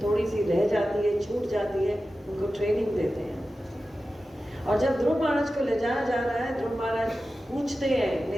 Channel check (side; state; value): both; normal; correlation 0.94